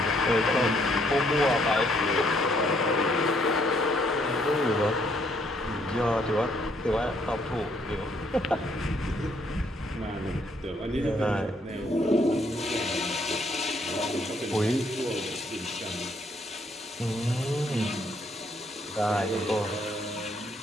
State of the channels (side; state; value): both; normal; correlation 0.69